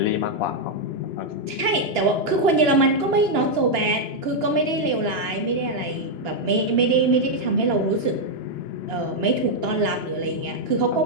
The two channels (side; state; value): left; late; 2.9 ms